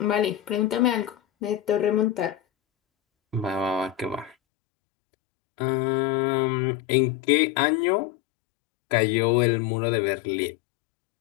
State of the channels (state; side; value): drops out; right; at 4.4 s